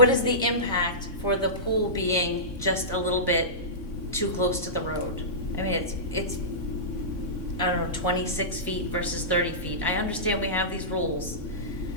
the impact for the pool being just a little bit too close to the road? I mean, it's I don't know, 26 feet versus 30 feet. I understand we have these rules,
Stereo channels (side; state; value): right; late; 3.6 ms